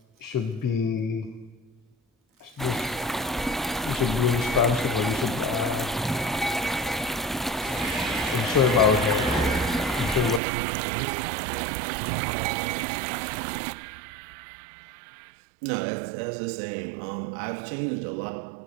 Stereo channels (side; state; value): left; drops out; at 10.4 s